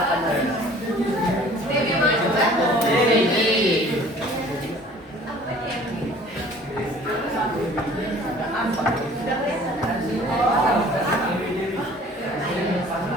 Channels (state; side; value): normal; both; correlation 0.50